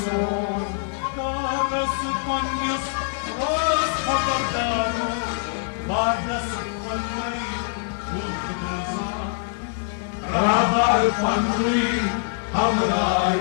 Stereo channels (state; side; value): silent; right; digital silence